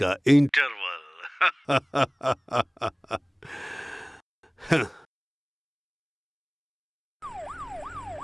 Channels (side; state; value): both; identical; correlation 1.00